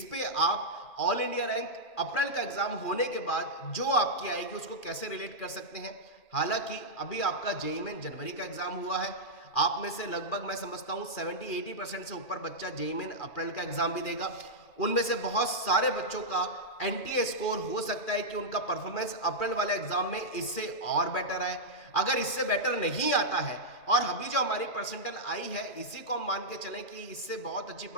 पे आप ऑल इंडिया रैंक अप्रैल का एग्जाम होने के बाद जो आपकी आएगी उसको कैसे रिलेट कर सकते हैं। हालांकि अभी आपका जेईई में जनवरी का एग्जाम हुआ है, आप में से लगभग मैं समझता हूं 70-80% से ऊपर बच्चा जेईई में अप्रैल का एग्जाम भी देगा। उनमें से बहुत सारे बच्चों का एनटीए स्कोर हो सकता है कि उनका परफॉर्मेंस अप्रैल वाले एग्जाम में इससे और बेटर आए। अगर इससे बेटर नहीं आता है और अभी जो हमारी परसेंटाइल आई है इसी को हम मान के चलें कि इससे बहुत अच्छी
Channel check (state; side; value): late; right; 2.4 ms